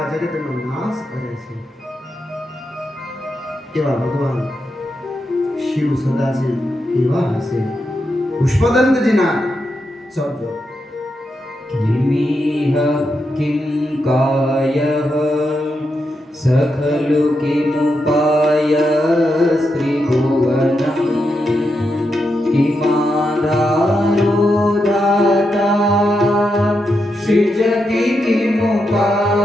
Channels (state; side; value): normal; both; correlation 0.85